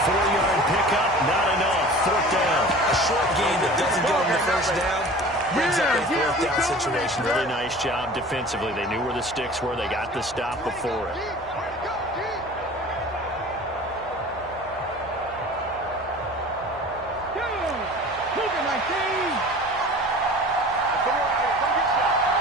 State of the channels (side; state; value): right; noise; hum, 21 dB below the sound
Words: 4-yard pickup, not enough. 4th down. A short gain that doesn't get him the first down brings up a 4th down situation. Really nice job defensively. They knew where the sticks were. They got the stop before it.